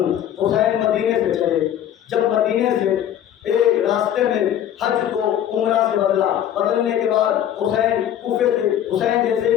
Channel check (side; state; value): right; quieter; 10.6 dB